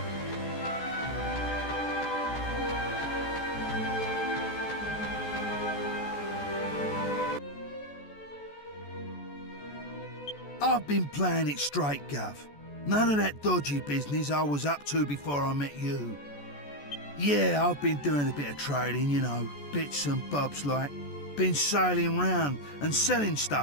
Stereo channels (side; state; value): right; late; 14 ms